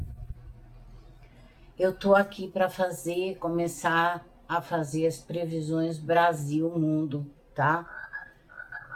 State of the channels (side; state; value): both; identical; correlation 1.00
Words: Eu tô aqui para começar a fazer as previsões Brasil-Mundo, tá?